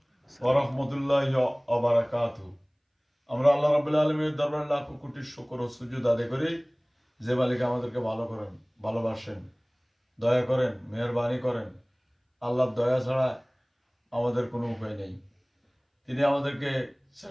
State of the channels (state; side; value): identical; both; correlation 1.00